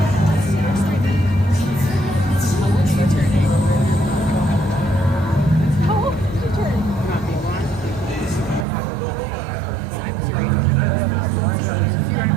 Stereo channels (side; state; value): left; drops out; at 8.7 s